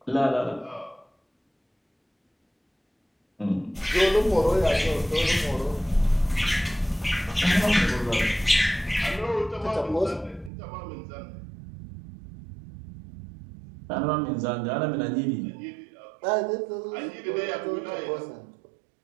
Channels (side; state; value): left; drops out; at 10.5 s